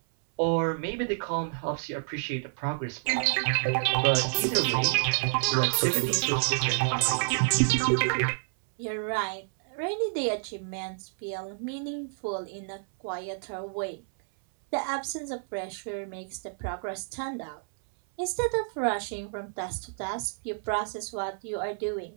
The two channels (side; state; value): left; silent; 58 dB below the other